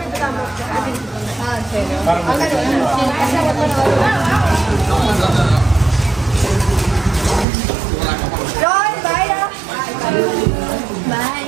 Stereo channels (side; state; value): left; drops out; at 7.5 s